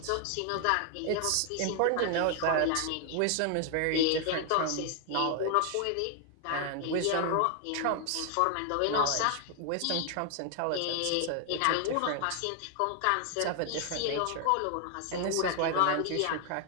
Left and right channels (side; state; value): both; different; correlation 0.00